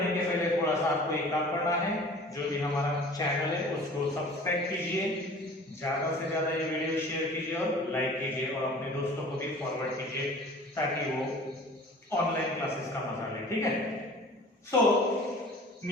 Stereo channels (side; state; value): both; normal; correlation 0.45